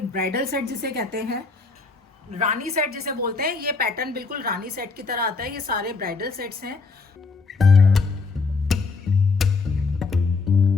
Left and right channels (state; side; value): quieter; right; 4.2 dB